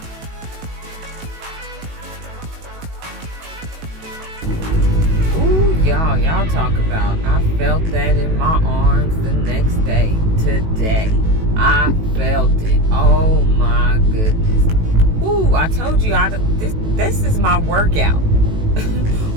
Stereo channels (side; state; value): left; late; 18 ms